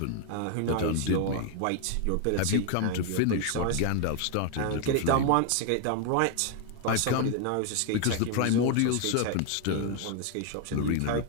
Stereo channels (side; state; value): both; different; correlation 0.00